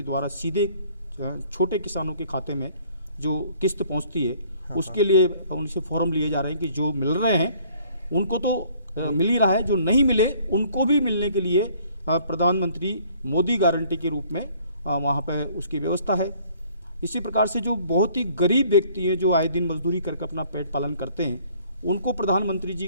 द्वारा सीधे छोटे किसानों के खाते में जो किस्त पहुंचती है उसके लिए उनसे फॉर्म लिए जा रहे हैं कि जो मिल रहे हैं उनको तो मिल ही रहा है, जो नहीं मिले उनको भी मिलने के लिए प्रधानमंत्री मोदी गारंटी के रूप में वहाँ पे उसकी व्यवस्था है। इसी प्रकार से जो बहुत ही गरीब व्यक्ति हैं जो आए दिन मजदूरी करके अपना पेट पालन करते हैं उनको प्रधानमंत्री जी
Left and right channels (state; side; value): inverted; both; correlation -0.58